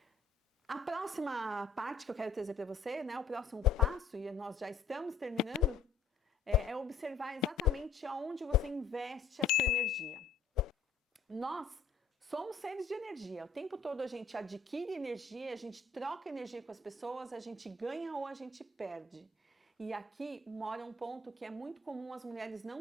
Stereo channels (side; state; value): right; quieter; 5.0 dB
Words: A próxima parte que eu quero trazer para você, né, o próximo passo, e nós já estamos terminando, é observar exatamente aonde você investe a sua energia. Nós somos seres de energia. O tempo todo a gente adquire energia, a gente troca energia com as pessoas, a gente ganha ou a gente perde. E aqui mora um ponto que é muito comum as mulheres